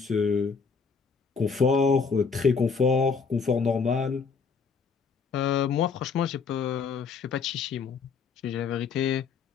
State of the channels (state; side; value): quieter; right; 5.3 dB